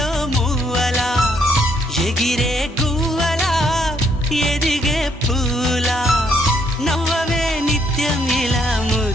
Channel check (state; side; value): normal; both; correlation 0.71